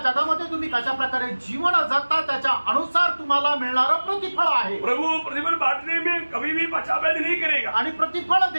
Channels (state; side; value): inverted; both; correlation -1.00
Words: जगामध्ये तुम्ही कशा प्रकारे जीवन जगता त्याच्या अनुसार तुम्हाला मिळणारं प्रतिफळ आहे। प्रभु प्रतिफल बांटने में कभी भी पक्षपात नहीं करेगा आणि प्रतिफळ